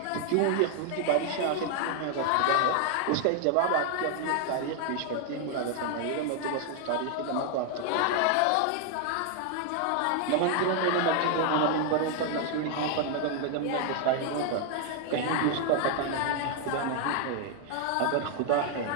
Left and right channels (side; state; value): both; different; correlation 0.00